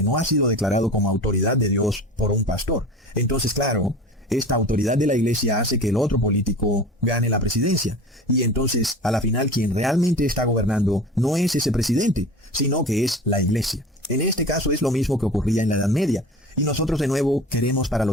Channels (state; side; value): normal; both; correlation 0.36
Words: no ha sido declarado como autoridad de Dios por un pastor. Entonces, claro, esta autoridad de la iglesia hace que el otro político gane la presidencia. Y entonces, a la final, quien realmente está gobernando no es ese presidente, sino que es la iglesia. En este caso es lo mismo que ocurría en la Edad Media. Y nosotros de nuevo queremos para